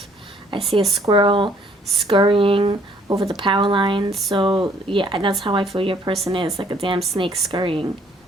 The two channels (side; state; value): both; normal; correlation 0.62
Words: I see a squirrel scurrying over the power line. So, yeah, that's how I feel your person is, like a damn snake scurrying.